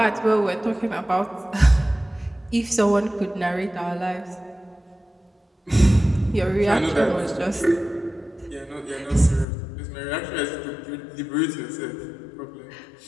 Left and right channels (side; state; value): right; drops out; at 9.5 s